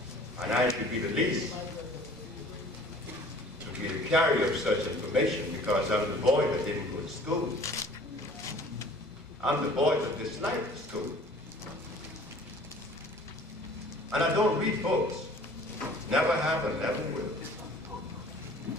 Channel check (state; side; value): normal; both; correlation 0.50